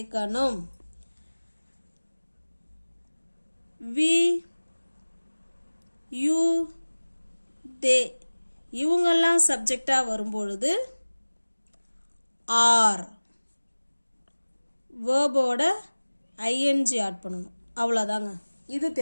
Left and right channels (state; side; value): inverted; both; correlation -1.00